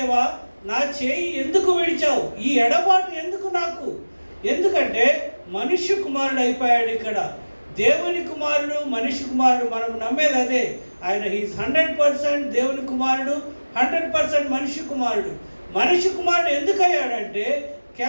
నా చేయి ఎందుకు విడిచావు? ఈ ఎడబాటు ఎందుకు నాకు? ఎందుకంటే మనుష్య కుమారుడు అయిపోయాడు ఇక్కడ. దేవుని కుమారుడు, మనిషి కుమారుడు. మనం నమ్మేది అదే. ఆయన హీస్ 100% దేవుని కుమారుడు, 100% మనిషి కుమారుడు. మనిషి కుమారుడు ఎందుకు అయ్యాడంటే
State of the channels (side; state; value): both; inverted; correlation -1.00